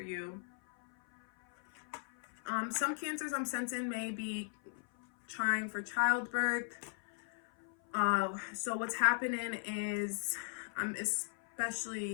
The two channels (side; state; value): right; silent; 53 dB below the other